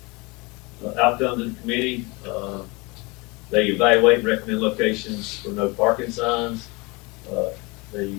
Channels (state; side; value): quieter; right; 26.3 dB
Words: Outcomes of the committee. They evaluate and recommend locations for no parking signs. They